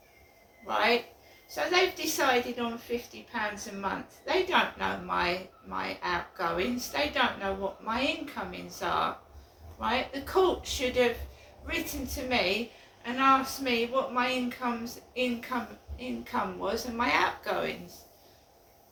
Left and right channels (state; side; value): identical; both; correlation 1.00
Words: right? So they've decided on £50 a month. They don't know my outgoings. They don't know what my incomings are, right? The court should have written to me and asked me what my income was and my outgoings,